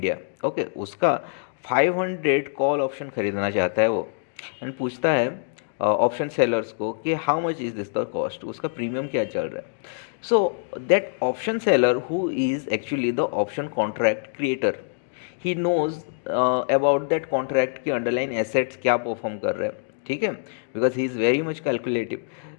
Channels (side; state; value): right; silent; digital silence